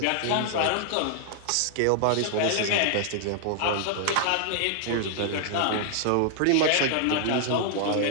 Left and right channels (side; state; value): both; different; correlation 0.00